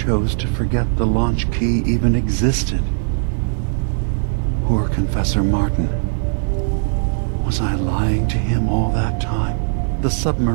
to forget the launch key even existed. Poor Confessor Martin. Was I lying to him all that time? The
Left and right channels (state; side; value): silent; left; digital silence